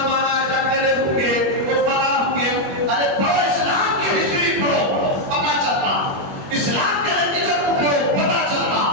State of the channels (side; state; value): left; late; 21 ms